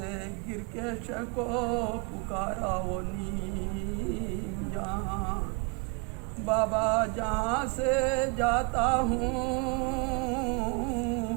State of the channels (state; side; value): quieter; left; 31.5 dB